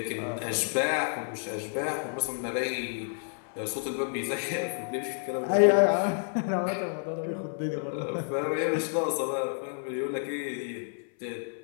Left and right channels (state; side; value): silent; right; 55 dB below the other